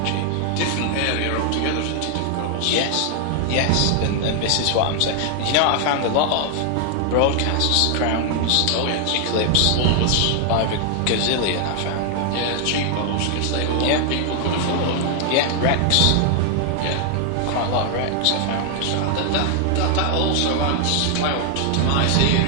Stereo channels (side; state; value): both; different; correlation 0.00